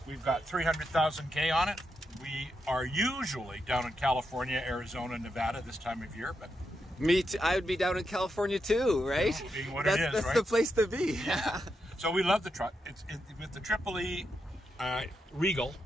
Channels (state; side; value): normal; both; correlation 0.84